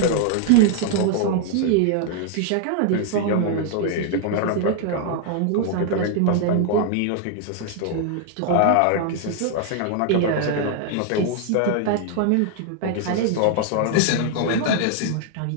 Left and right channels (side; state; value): both; different; correlation 0.00